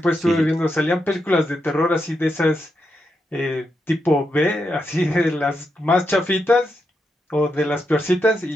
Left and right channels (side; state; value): both; normal; correlation 0.84